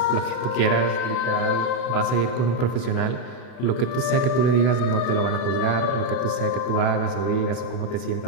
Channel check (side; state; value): right; late; 32 ms